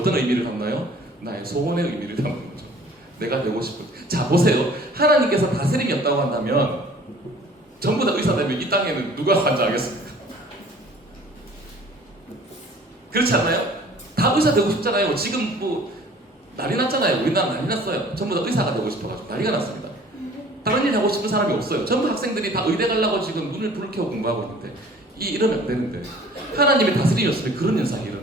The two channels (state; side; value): normal; both; correlation 0.51